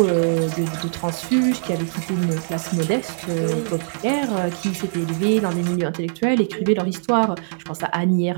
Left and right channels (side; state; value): left; silent; digital silence